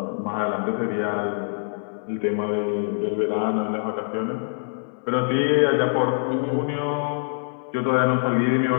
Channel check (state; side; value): silent; right; digital silence